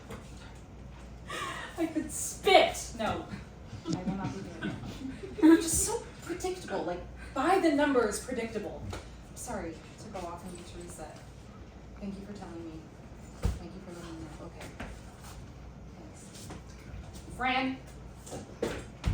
I could spit. No, I will not be doing it. You're just so predictable, like by the numbers predictable. Sorry to go off and need to reset. Thank you for telling me. Thank you for letting me know. Okay. Thanks.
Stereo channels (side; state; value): both; identical; correlation 1.00